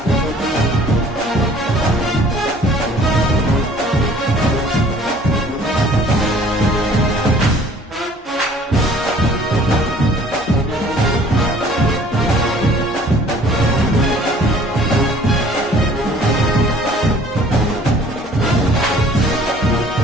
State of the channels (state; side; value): normal; both; correlation 0.54